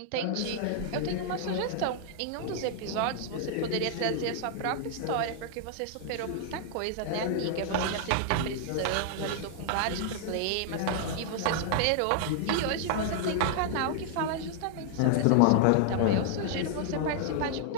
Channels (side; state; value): both; different; correlation 0.00